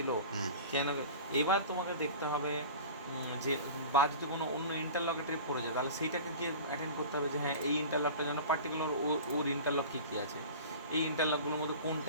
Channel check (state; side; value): inverted; both; correlation -0.37